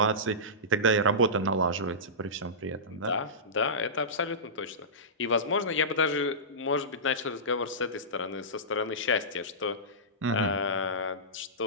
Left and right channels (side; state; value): both; normal; correlation -0.18